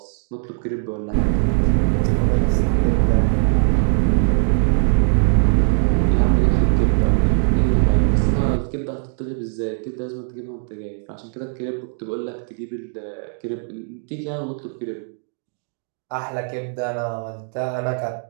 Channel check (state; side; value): silent; left; 57 dB below the other